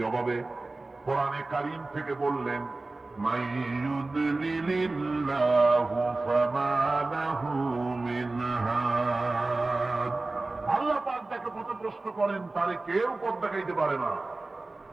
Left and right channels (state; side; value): quieter; left; 3.2 dB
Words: কোরআনে কারীম থেকে বললেন, মাইয়ুদলিলিল্লাহু ফামা লাহু মিন হাদ। আল্লাহ পাক যাকে পথভ্রষ্ট করেন তারে কেউ পথ দেখাইতে পারে না।